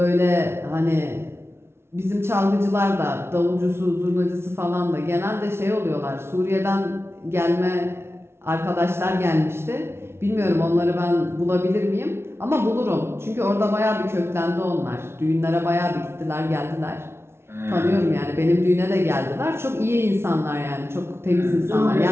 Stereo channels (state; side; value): late; left; 0.12 ms